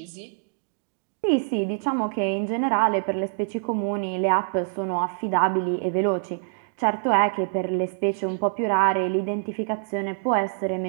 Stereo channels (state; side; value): silent; left; digital silence